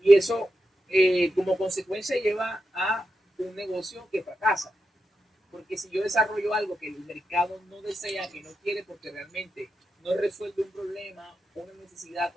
Y eso, como consecuencia, lleva a un negocio que fracasa. Porque si yo desarrollo algo que el mercado no desea, que no quiere, porque realmente no resuelve un problema, una necesidad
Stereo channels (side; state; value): both; normal; correlation 0.87